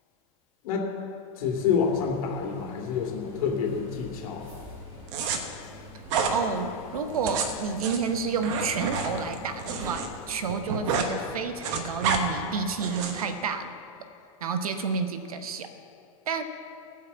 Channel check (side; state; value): both; normal; correlation 0.01